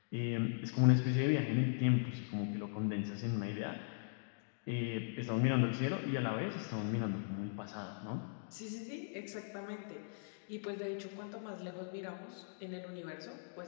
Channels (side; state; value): right; silent; digital silence